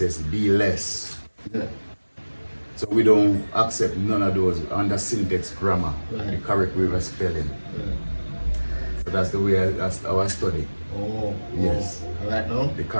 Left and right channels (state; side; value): inverted; both; correlation -1.00